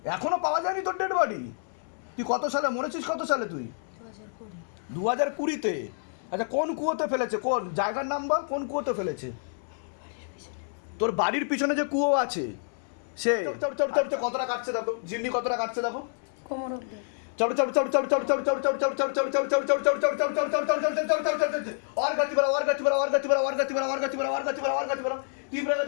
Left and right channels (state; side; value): silent; right; 59 dB below the other